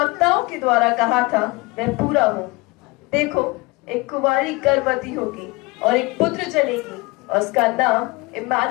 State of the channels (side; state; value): right; quieter; 24.3 dB